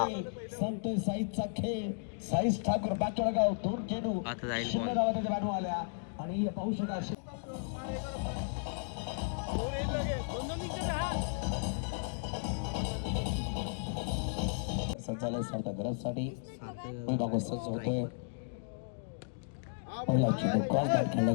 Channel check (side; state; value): right; silent; digital silence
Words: संतोष साईशचा खेळ. साईश ठाकूर बाचळगाव दोन चेंडू आता जाईल बॉल. आल्या आणि पाहू शकता संचालक सारख्या गरजसाठी सज्ज होतोय. पहिला चेंडू क्रॉस बॅट खेळला